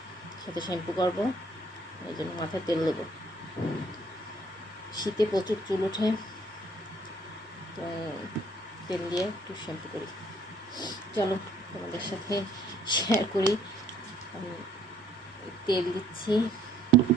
সাথে শ্যাম্পু করবো, এই জন্য মাথায় তেল দেবো। শীতে প্রচুর চুল ওঠে, তো তেল দিয়ে একটু শ্যাম্পু করি। চলো তোমাদের সাথে শেয়ার করি। আমি তেল দিচ্ছি,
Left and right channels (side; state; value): both; normal; correlation 0.62